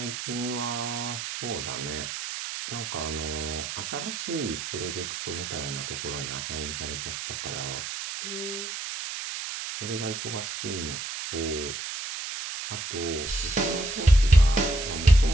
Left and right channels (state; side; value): noise; right; hiss, 6 dB below the sound